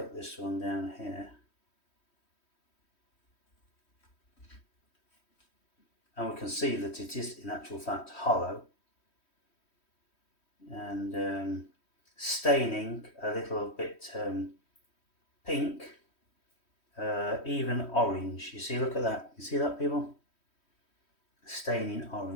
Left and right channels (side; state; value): right; late; 3.1 ms